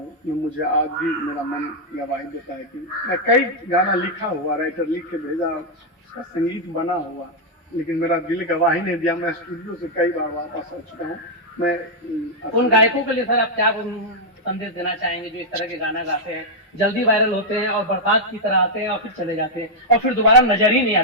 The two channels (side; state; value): both; normal; correlation -0.03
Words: मुझे आज भी मेरा मन गवाही देता है कि मैं कई गाना लिखा हुआ, राइटर लिख के भेजा, उसका संगीत बना हुआ, लेकिन मेरा दिल गवाही नहीं दिया। मैं स्टूडियो से कई बार वापस आ चुका हूँ। मैं उन गायकों के लिए सर आप क्या संदेश देना चाहेंगे जो इस तरह के गाना गाते हैं, जल्दी वायरल होते हैं और बरसात की तरह आते हैं और फिर चले जाते हैं और फिर दोबारा नजर ही नहीं